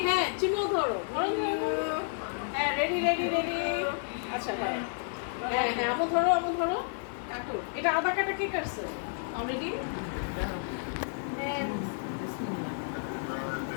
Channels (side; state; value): right; silent; digital silence